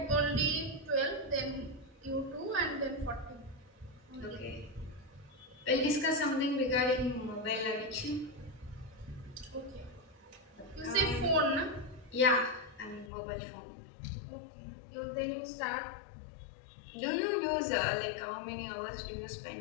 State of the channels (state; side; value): drops out; right; at 13.1 s